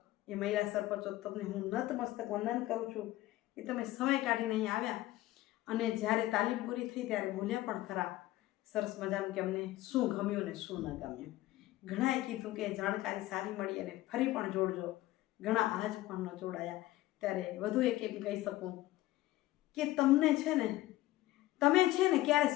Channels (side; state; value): right; quieter; 16.5 dB